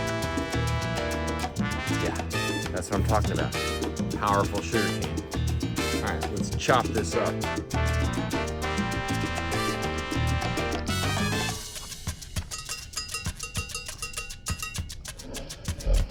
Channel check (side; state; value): both; identical; correlation 1.00